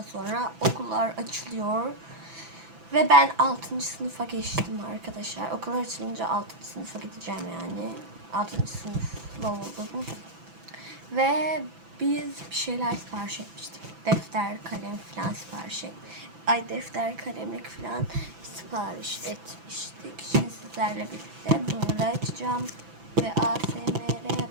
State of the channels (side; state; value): left; late; 6.0 ms